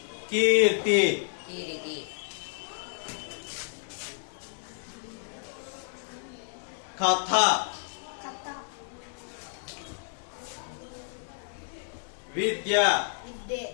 కీర్తి, కీరితి. కథ, కథ. విద్య. విద్యే.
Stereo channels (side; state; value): right; silent; 57 dB below the other